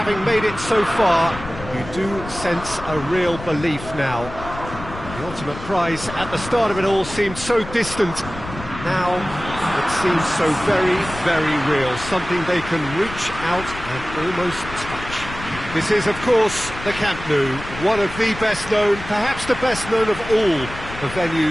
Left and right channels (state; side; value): noise; left; rumble, 12 dB below the sound